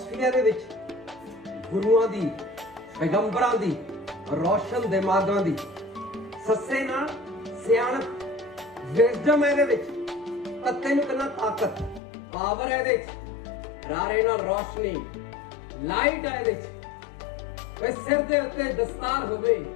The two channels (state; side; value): drops out; right; at 12.0 s